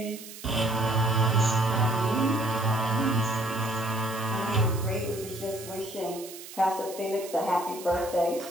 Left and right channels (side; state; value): right; noise; hiss, 14 dB below the sound